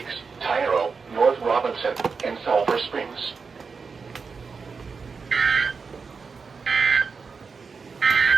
Tyro, North Robinson, and Sulphur Springs.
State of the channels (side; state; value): left; quieter; 5.1 dB